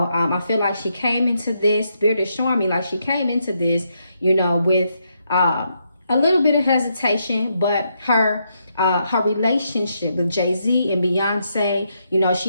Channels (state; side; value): inverted; both; correlation -0.80